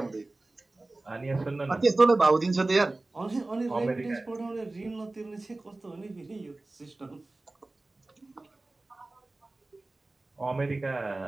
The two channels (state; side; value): quieter; left; 3.0 dB